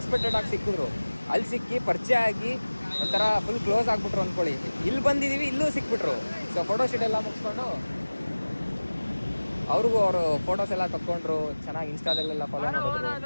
ಆಗಿ ಸಿಕ್ಕಿದ್ರು. ಅಲ್ಲಿ ಸಿಕ್ಕಿ ಪರಿಚಯ ಆಗಿ ಒಂಥರ ಫುಲ್ ಕ್ಲೋಸ್ ಆಗಿಬಿಟ್ರು ಅಂದ್ಕೊಳ್ಳಿ. ಇಲ್ಲಿ ಬಂದಿದ್ದೀವಿ, ಇಲ್ಲೂ ಸಿಕ್ಬಿಟ್ರು. ಸೊ ಫೋಟೋ ಶೂಟ್ ಎಲ್ಲ ಮುಗಿಸ್ಕೊಂಡು ಅವ್ರಿಗೂ ಅವರು ಫೋಟೋಸ್ ಎಲ್ಲ ತಗೊಂಡ್ರು. ಚೆನ್ನಾಗಿ ಇನ್ಸ್ಟಾದಲ್ಲೆಲ್ಲ ಫಾಲೋ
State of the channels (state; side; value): inverted; both; correlation -1.00